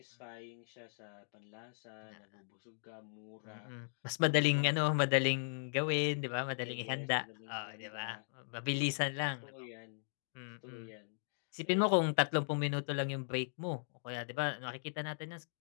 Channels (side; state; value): right; silent; digital silence